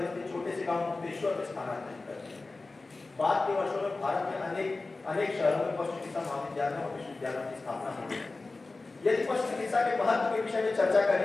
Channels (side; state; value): right; quieter; 3.5 dB